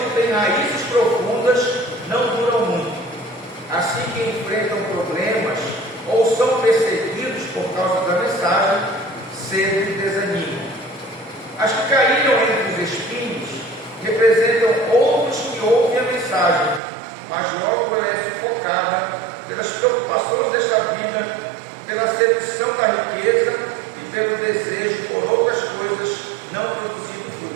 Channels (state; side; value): drops out; left; at 16.8 s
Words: têm raízes profundas, não duram muito. Assim que enfrentam problemas ou são perseguidos por causa da mensagem, cedo desanimam. As que caíram entre os espinhos representam outros que ouvem a mensagem, mas logo ela é sufocada pelas preocupações desta vida, pela sedução da riqueza e pelo desejo por outras coisas, não produzindo